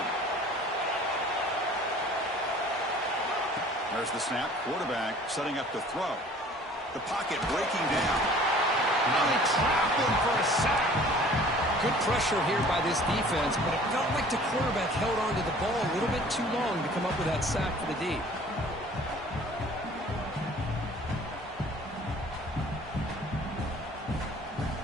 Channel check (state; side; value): normal; both; correlation 0.50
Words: There's the snap. Quarterback setting up to throw. The pocket breaking down. Now they trap him for a sack. Good pressure here by this defense, but it felt like the quarterback held on to the ball a little bit too long to come up with that sack for the D.